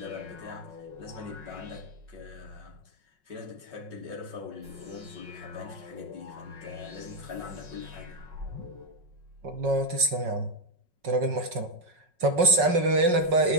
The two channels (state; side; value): late; left; 5.4 ms